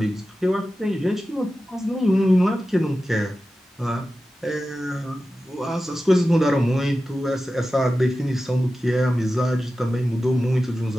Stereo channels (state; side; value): normal; both; correlation 0.93